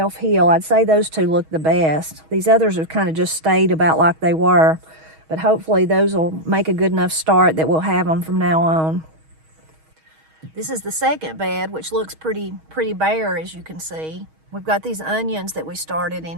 I'd say those two look the best. These others have kind of just stayed about like they were, but hopefully those will make a good enough start that we'll have them from now on. This is the second bed, which looks pretty bare, as you can see. We've got these onions that we started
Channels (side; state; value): left; late; 6.3 ms